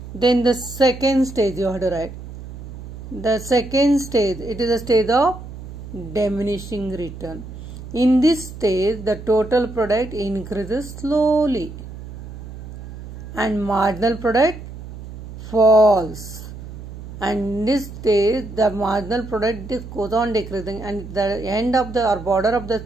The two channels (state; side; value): noise; right; hum, 12 dB below the sound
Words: Then the second stage you have to write. The second stage, it is a stage of diminishing return. In this stage, the total product increases slowly and marginal product falls. And in this stage, the marginal product goes on decreasing, and the end of the or border of the